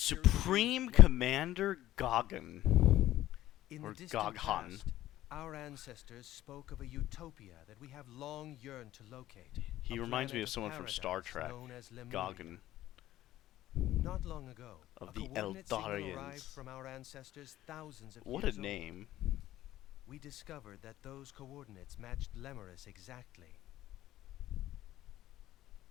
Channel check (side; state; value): right; quieter; 14.3 dB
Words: Supreme Commander Gogan. In Or the distant Goghan. past, our ancestors spoke of a utopia that we have long yearned to locate. He a reminds me planet of someone from Star paradise Trek. known as Lemuria. Gogan. Not long ago, Of a the coordinate signal Eldarians. arrived from our ancestors thousands of What years a name. old. We discovered that those coordinates matched Lemuris exactly.